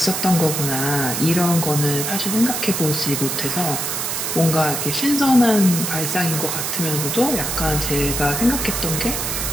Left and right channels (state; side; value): noise; right; hiss, 2 dB below the sound